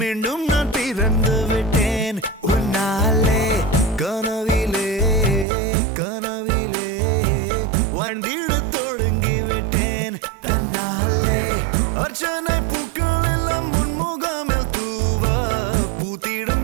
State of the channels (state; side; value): drops out; left; at 5.5 s